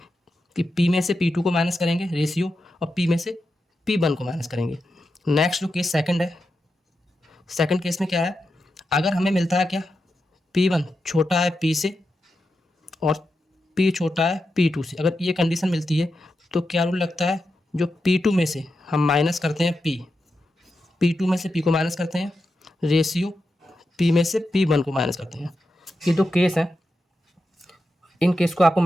कि P में से P2 को माइनस करेंगे रेशियो और P में से P1 को माइनस करेंगे। नेक्स्ट जो केस सेकंड है, सेकंड केस में क्या है, अगर हमें मिलता है क्या, P1 छोटा है P से और P छोटा है P2 से। अगर ये कंडीशन मिलती है तो क्या रूल लगता है, जो P2 में से हम माइनस करते हैं P2 में से P को माइनस करते हैं रेशियो P में से P1 को माइनस करते हैं। ये दो केस हैं, इन केस को आपको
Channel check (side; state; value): both; normal; correlation 0.88